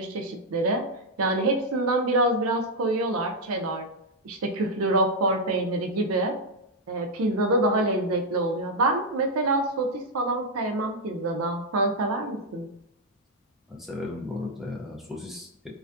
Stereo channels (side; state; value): both; normal; correlation 0.00